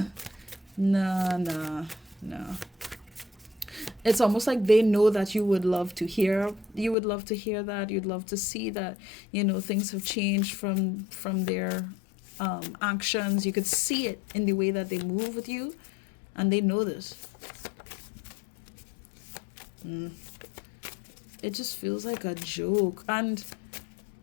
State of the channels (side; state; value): right; drops out; at 7.0 s